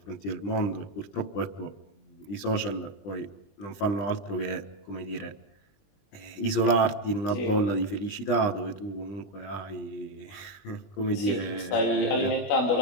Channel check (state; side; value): late; right; 20 ms